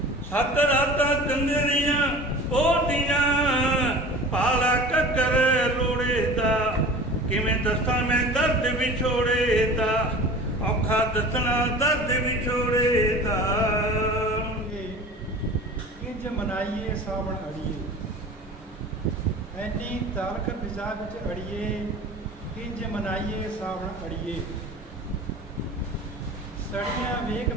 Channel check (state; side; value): normal; both; correlation 0.39